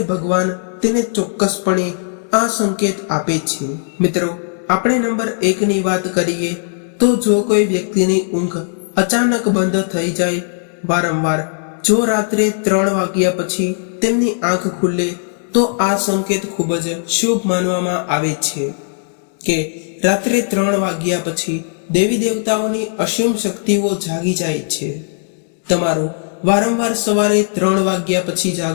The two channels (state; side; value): silent; right; digital silence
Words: ભગવાન તેને ચોક્કસપણે આ સંકેત આપે છે. મિત્રો, આપણે નંબર 1 ની વાત કરીએ તો જો કોઈ વ્યક્તિની ઊંઘ અચાનક બંધ થઈ જાય, વારંવાર જો રાત્રે 3 વાગ્યા પછી તેમની આંખ ખુલે તો આ સંકેત ખૂબ જ શુભ માનવામાં આવે છે કે રાત્રે 3 વાગ્યા પછી દેવી દેવતાઓની અસીમ શક્તિઓ જાગી જાય છે. તમારું વારંવાર સવારે 3 વાગ્યા પછી